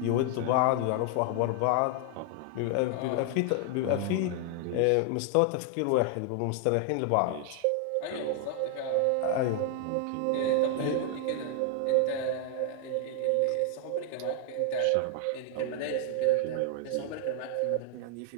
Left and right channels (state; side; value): different; both; correlation 0.00